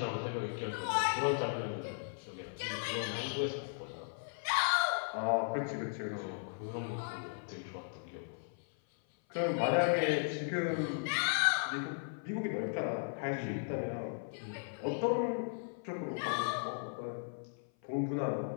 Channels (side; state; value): right; silent; 53 dB below the other